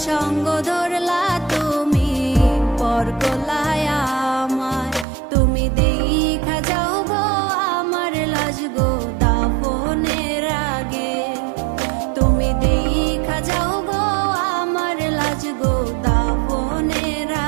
সঙ্গ ধরলা তুমি পর কলায় আমার। তুমি দেখা যাও গো আমার লাজ গো দাফনের আগে, তুমি দেখা যাও গো আমার লাজ গো দাফনের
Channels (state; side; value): drops out; left; at 5.1 s